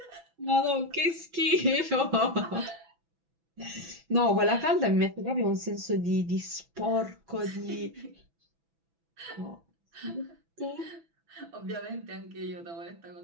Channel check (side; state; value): left; late; 6.0 ms